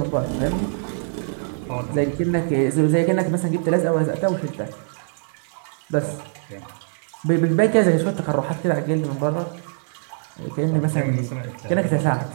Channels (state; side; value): silent; left; digital silence